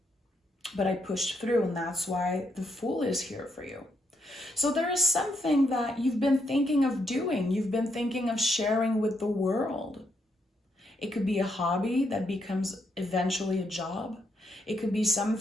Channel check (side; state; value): both; normal; correlation 0.77